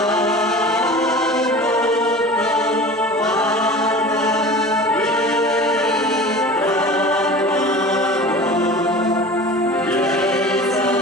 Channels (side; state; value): both; normal; correlation 0.38